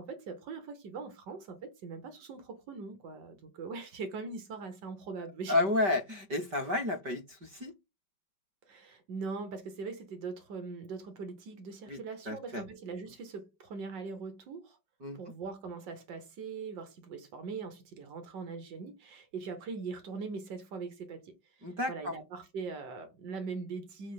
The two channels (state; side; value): late; left; 5.1 ms